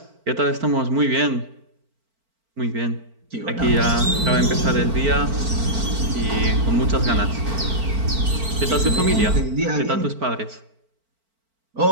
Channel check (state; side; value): late; left; 4.4 ms